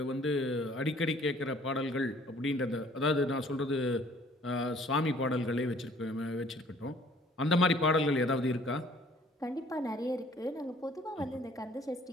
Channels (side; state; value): both; normal; correlation 0.56